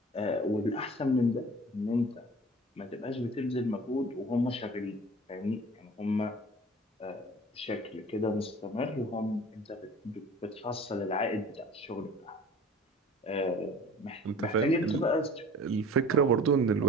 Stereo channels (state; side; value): normal; both; correlation 0.43